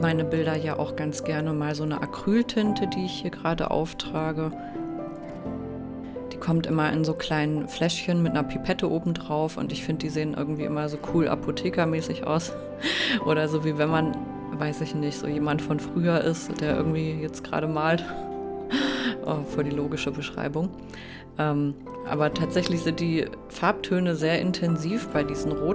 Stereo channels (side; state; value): both; identical; correlation 1.00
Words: Bilder ja auch ganz gerne mal so eine Acryltinte, die ich hier gerade auftrage. Die kommt immer in so kleinen Fläschchen mit einer Pipette oben drauf und ich finde, die sehen irgendwie immer so cool apothekermäßig aus. Oder so wie wenn man, weiß ich nicht, so jemand von früher ist, der irgendwie jetzt gerade malt. Oh, voll die logische Beschreibung. Aber tatsächlich sind die Farbtöne sehr intensiv bei diesen